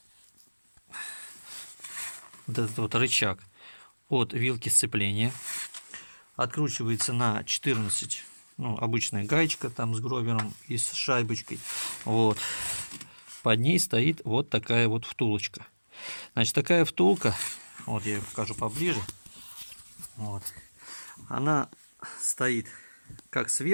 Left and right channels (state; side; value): inverted; both; correlation -1.00